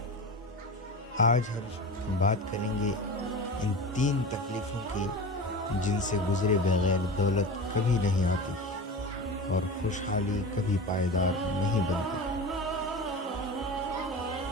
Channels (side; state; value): both; normal; correlation 0.30